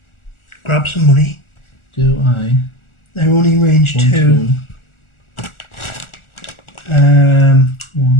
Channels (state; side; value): late; right; 1.4 ms